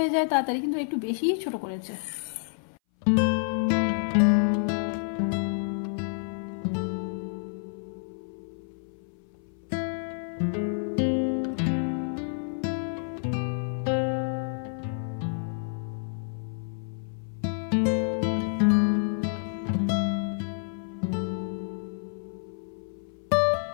যায় তাড়াতাড়ি, কিন্তু একটু বেশিই ছোট করেছে।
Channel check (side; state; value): right; silent; 59 dB below the other